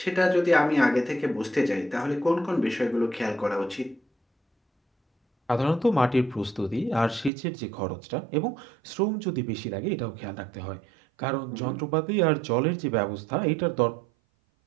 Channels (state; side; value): drops out; left; at 7.3 s